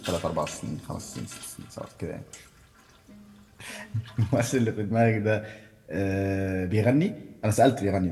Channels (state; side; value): identical; both; correlation 1.00